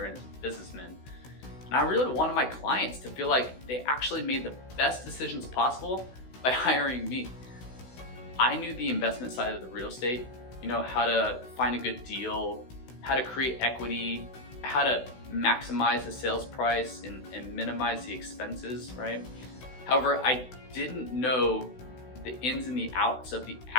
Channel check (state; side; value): late; right; 16 ms